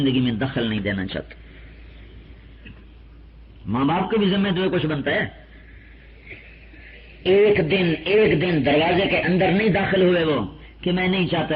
میں دخل نہیں دینا چاہتا. ماں باپ کے بھی ذمہ تو کچھ بنتا ہے. ایک دن دروازے کے اندر نہیں داخل ہوئے وہ کہ میں نہیں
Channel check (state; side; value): identical; both; correlation 1.00